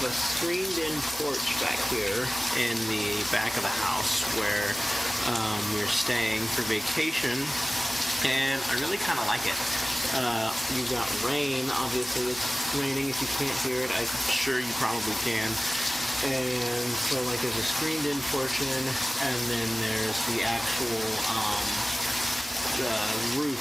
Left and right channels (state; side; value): normal; both; correlation 0.97